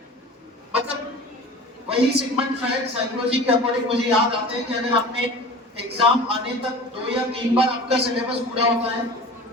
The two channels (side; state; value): both; normal; correlation 0.38